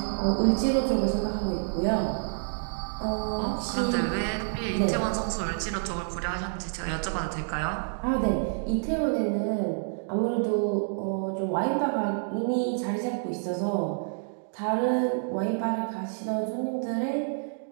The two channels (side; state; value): left; silent; digital silence